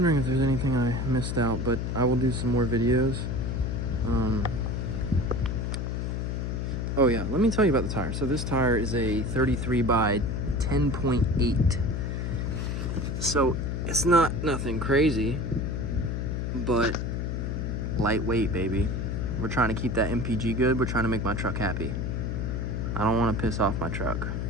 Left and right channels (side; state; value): left; noise; hum, 2 dB below the sound